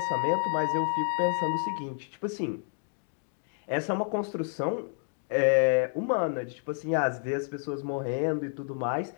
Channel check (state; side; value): silent; right; 58 dB below the other